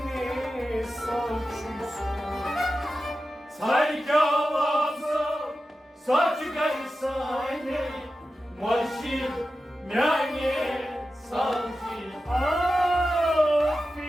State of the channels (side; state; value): both; normal; correlation 0.92